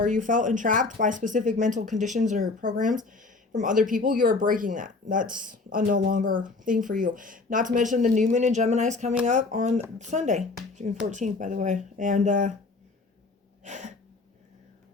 you felt entrapped by specific mental conditions or programs from other people, you're breaking that. That's a no longer thing for you. Not to mention the new moon in Gemini is coming up on Sunday, June 14th, by the way. And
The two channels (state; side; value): quieter; right; 3.7 dB